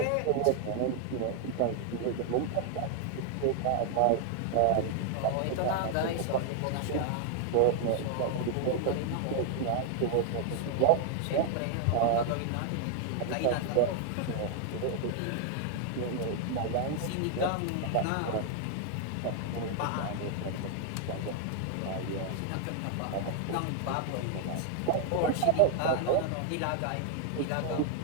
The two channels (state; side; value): different; both; correlation 0.00